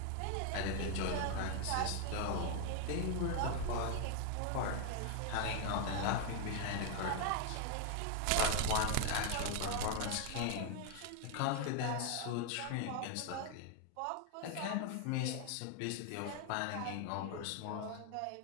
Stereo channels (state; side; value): different; both; correlation 0.00